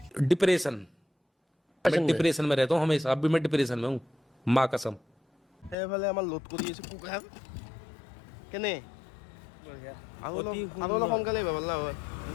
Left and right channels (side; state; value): right; drops out; at 5.8 s